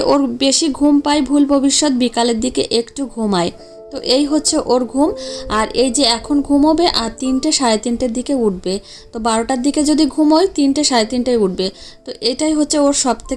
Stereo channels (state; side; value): identical; both; correlation 1.00